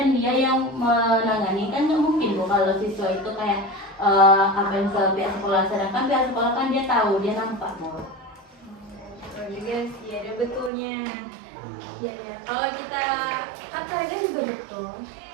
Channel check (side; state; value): left; drops out; at 10.7 s